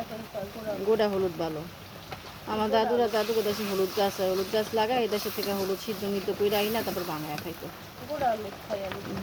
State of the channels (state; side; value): identical; both; correlation 1.00